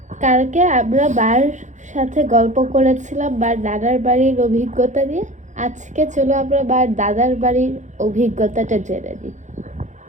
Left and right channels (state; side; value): late; left; 0.35 ms